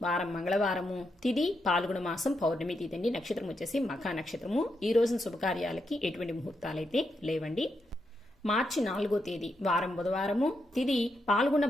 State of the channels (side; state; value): both; normal; correlation 0.83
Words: వారం మంగళవారము, తిథి పాల్గొన మాసం పౌర్ణమి తిథి అండి. నక్షత్రం వచ్చేసి మఖా నక్షత్రము. ఈ రోజున శుభకార్యాలకి ఎటువంటి ముహూర్తాలైతే లేవండి. మార్చి 4వ తేదీ వారం బుధవారము, తిథి పాల్గొన